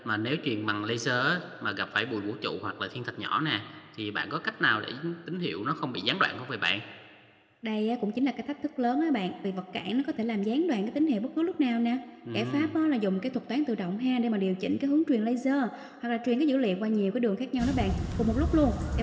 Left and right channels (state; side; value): identical; both; correlation 1.00